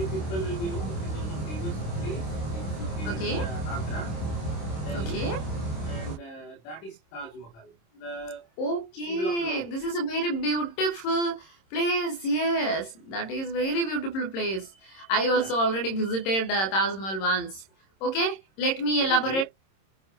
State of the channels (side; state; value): right; late; 26 ms